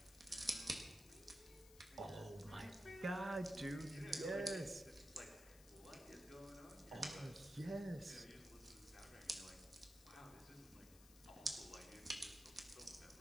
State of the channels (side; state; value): left; noise; hiss, 18 dB below the sound